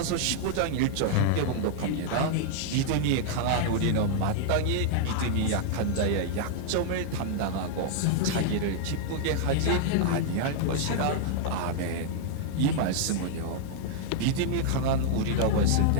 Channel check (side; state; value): both; different; correlation -0.01